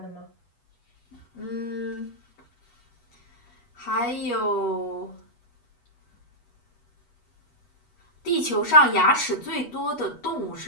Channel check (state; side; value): late; right; 8.3 ms